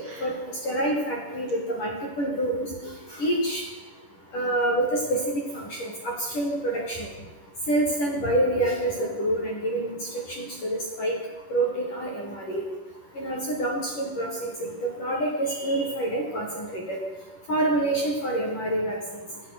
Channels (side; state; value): right; late; 10 ms